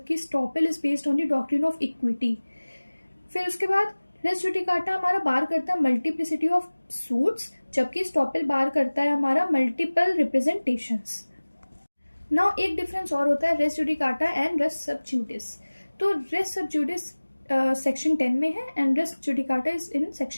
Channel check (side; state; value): both; inverted; correlation -1.00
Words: estoppel is based on the doctrine of equity. फिर उसके बाद रेस जुडिकाटा हमारा बार करता है मल्टीप्लिसिटी ऑफ सूट्स, जबकि स्टॉपल बार करता है हमारा मल्टीपल रिप्रेजेंटेशंस। नाउ एक डिफरेंस और होता है रेस जुडिकाटा एंड रेस सब जुडिस। तो रेस सब जुडिस सेक्शन 10 में है and res judicata is in